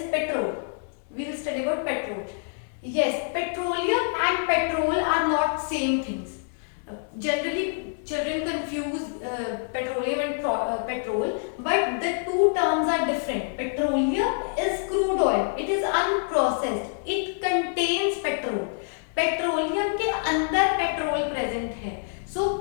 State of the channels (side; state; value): right; silent; digital silence